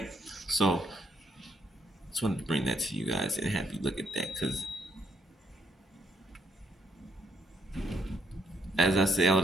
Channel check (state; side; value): normal; both; correlation 0.74